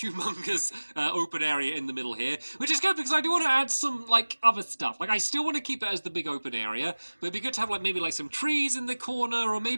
open area in the middle here, which is good because I do want to add some like other stuff. Like I still want to keep it as the big open area, but it'd be good to have like maybe like some trees in the corner, or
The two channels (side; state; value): both; inverted; correlation -1.00